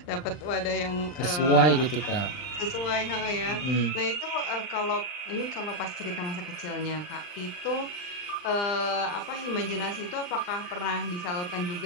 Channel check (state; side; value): late; right; 39 ms